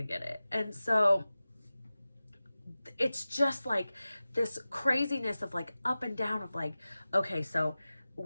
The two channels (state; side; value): inverted; both; correlation -0.96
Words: get it. And so it's just like this craziness of like up and down of like, okay, so